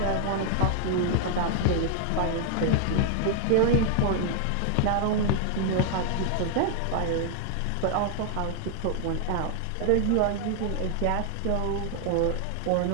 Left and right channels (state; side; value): different; both; correlation 0.00